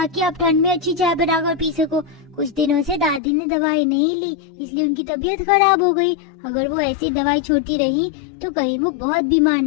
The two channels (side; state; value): right; drops out; at 3.2 s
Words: आप ठंड में अच्छी चाय बनाकर पी सको। कुछ दिनों से दादी ने दवाई नहीं ली, इसलिए उनकी तबीयत खराब हो गई। अगर वो ऐसी दवाई छोड़ती रही तो कहीं वो बहुत बीमार